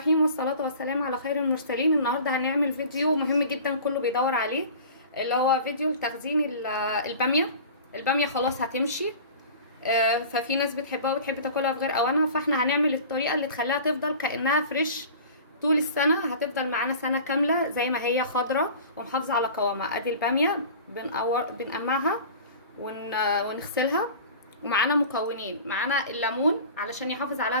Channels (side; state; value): both; inverted; correlation -0.40